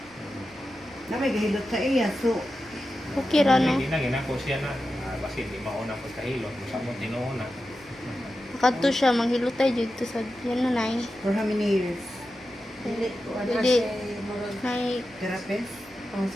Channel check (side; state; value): right; noise; rumble, 28 dB below the sound